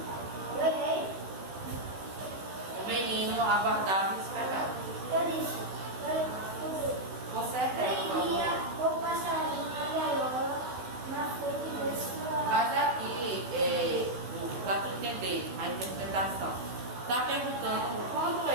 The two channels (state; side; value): late; left; 16 ms